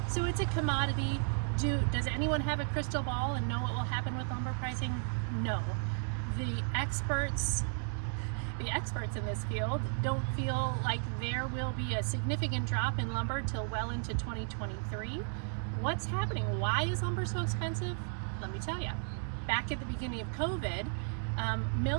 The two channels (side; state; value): left; silent; 55 dB below the other